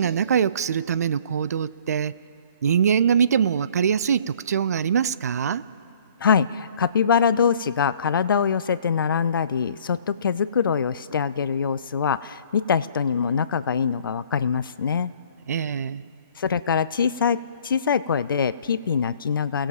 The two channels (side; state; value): both; inverted; correlation -0.55